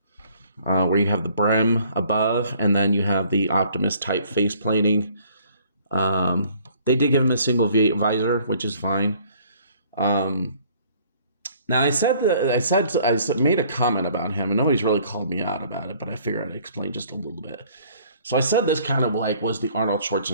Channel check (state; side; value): inverted; both; correlation -0.58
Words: Where you have the brim above, and then you have the Optimus type face plating. They did give him a single visor, which is fine. Now I made a comment about him, and nobody's really called me out about it, but I figured I'd explain just a little bit. So I said this kind of like was the Arnold